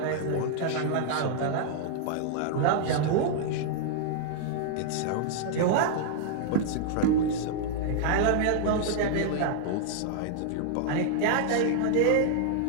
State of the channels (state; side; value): different; both; correlation -0.01